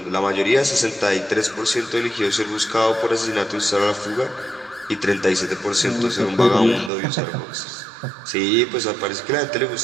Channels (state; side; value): drops out; left; at 6.9 s